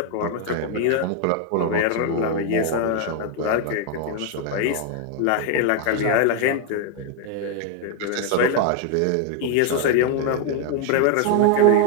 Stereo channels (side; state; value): both; different; correlation 0.00